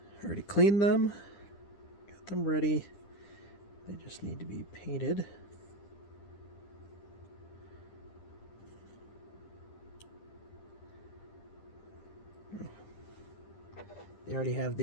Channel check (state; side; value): late; right; 10 ms